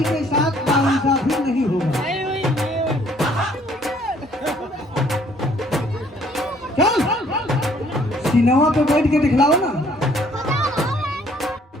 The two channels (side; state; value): both; normal; correlation 0.61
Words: के साथ नाइंसाफी नहीं होगा। चल सिनेमा पे बैठ के दिखलाओ ना।